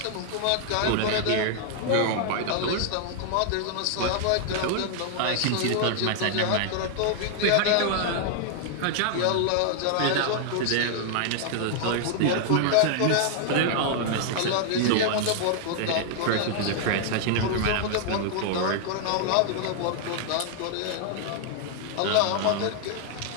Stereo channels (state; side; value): different; both; correlation -0.01